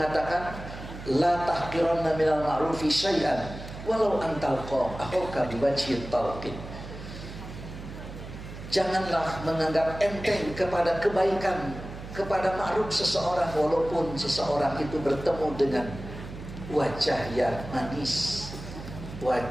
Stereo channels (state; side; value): noise; right; hum, 12 dB below the sound